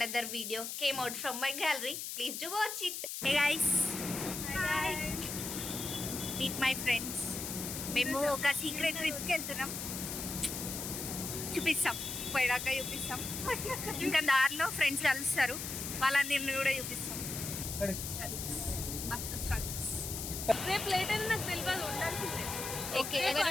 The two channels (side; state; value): left; noise; hiss, 5 dB below the sound